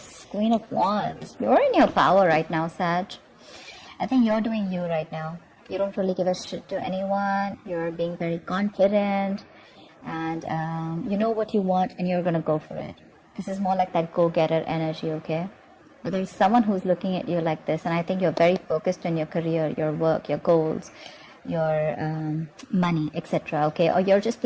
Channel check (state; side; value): identical; both; correlation 1.00